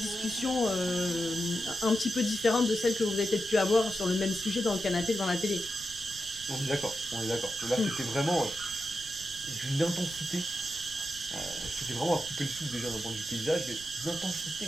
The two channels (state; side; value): noise; right; rumble, 18 dB below the sound